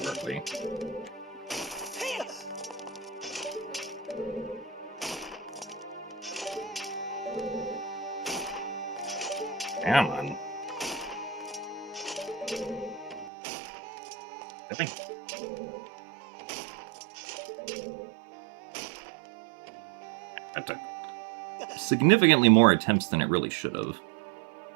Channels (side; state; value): left; drops out; at 13.3 s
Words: early. Come on. Really? That took significantly more attempts than it really should have.